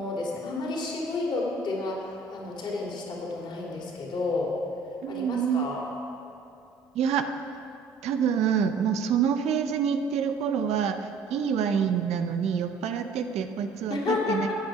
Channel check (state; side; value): quieter; left; 4.0 dB